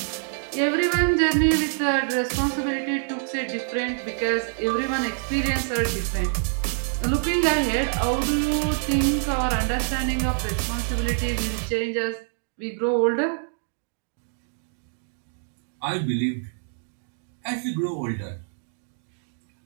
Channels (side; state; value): left; silent; digital silence